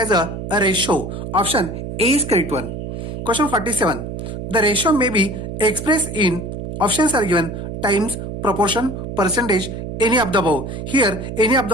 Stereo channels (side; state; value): right; noise; hum, 7 dB below the sound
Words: a ratio. Option A is correct one. Question 47. The ratio may be expressed in options are given times, proportion, percentage, any of the above. Here, any of